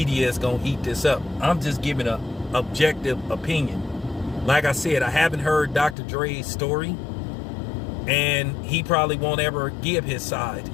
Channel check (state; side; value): drops out; right; at 6.0 s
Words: is gonna eat this up. I'm just giving a objective opinion. Like I said, I haven't heard Dr. Dre's story, and he probably won't ever give his side